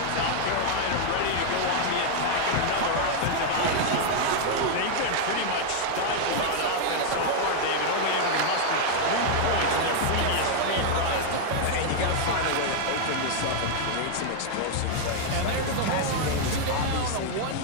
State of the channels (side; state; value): both; different; correlation 0.00